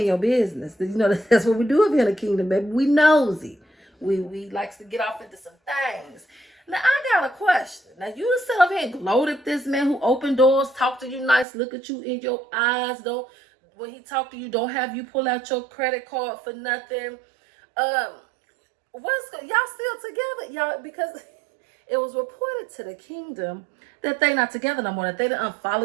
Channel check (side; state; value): left; drops out; at 11.5 s